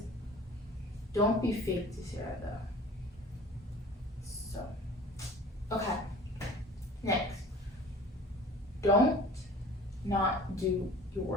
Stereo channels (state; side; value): normal; both; correlation 0.44